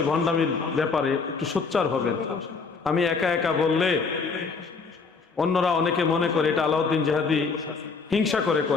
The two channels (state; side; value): quieter; right; 4.8 dB